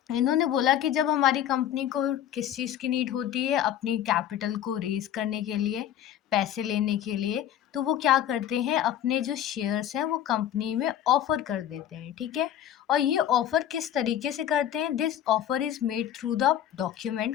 इन्होंने बोला कि जब हमारी कंपनी को किस चीज़ की नीड होती है, अपनी कैपिटल को रेज़ करने के लिए, पैसे लेने के लिए, तो वो क्या करते हैं, अपने जो शेयर्स हैं वो कंपनी में ऑफ़र कर देते हैं। ठीक है। और ये ऑफ़र किस तरीके से करते हैं? This offer is made through the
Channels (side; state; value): right; quieter; 10.9 dB